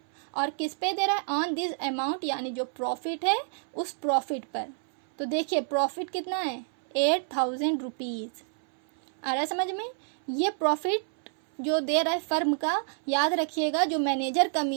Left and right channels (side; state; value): left; silent; 59 dB below the other